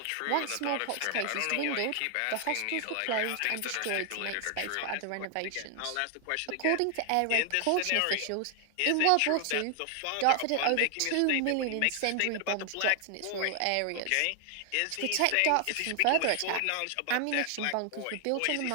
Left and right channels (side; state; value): both; different; correlation 0.00